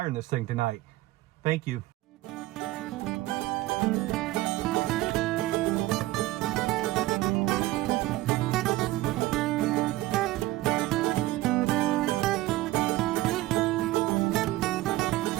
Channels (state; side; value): quieter; left; 17.6 dB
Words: in this thing tonight. Thank you.